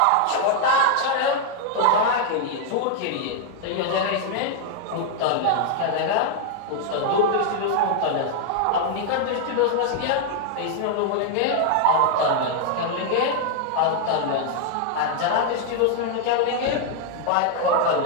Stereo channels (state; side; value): different; both; correlation 0.00